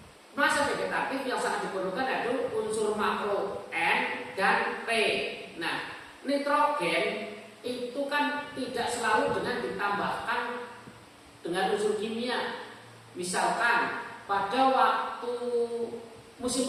masa vegetatif yang sangat diperlukan yaitu unsur makro N dan P. Nah, nitrogen itu kan tidak selalu dengan ditambahkan dengan unsur kimia. Misalkan pada waktu musim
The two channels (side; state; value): both; identical; correlation 1.00